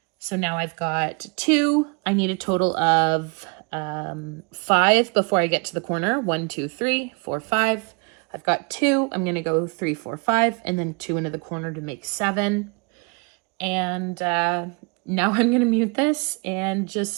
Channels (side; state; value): left; quieter; 32.9 dB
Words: So now I've got 2. I need a total of 5 before I get to the corner. 1, 2, 3, 4, 5. I've got 2. I'm going to go 3, 4, 5, and then 2 into the corner to make 7. And now I'm going to mute this and just